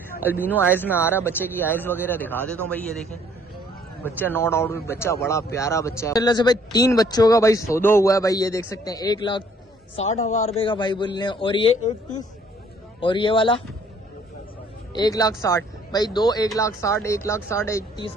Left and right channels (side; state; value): both; normal; correlation 0.61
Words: अल्बिनो आइज में आ रहा है, बच्चे की आइज वगैरह दिखा देता हूँ भाई। ये देखें बच्चा, नो डाउट बच्चा बड़ा प्यारा बच्चा है से भाई। 3 बच्चों का भाई सौदा हुआ है भाई। ये देख सकते हैं 1,60,000 रुपए का भाई बोल रहे हैं। और ये 1,30 और ये वाला 1,60,000 भाई। 1,60,000 1,60,000 1,30